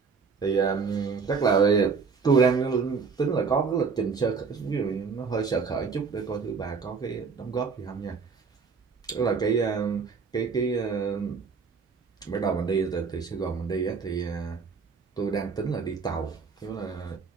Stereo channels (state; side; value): quieter; left; 5.3 dB